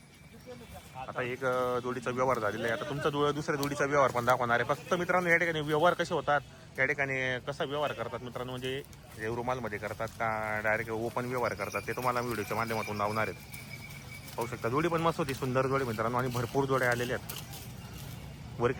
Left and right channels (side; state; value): both; identical; correlation 1.00